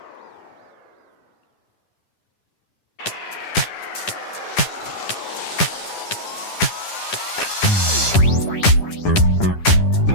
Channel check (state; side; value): late; right; 10 ms